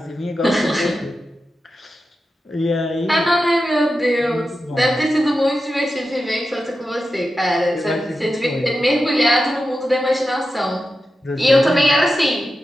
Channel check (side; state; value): both; normal; correlation 0.91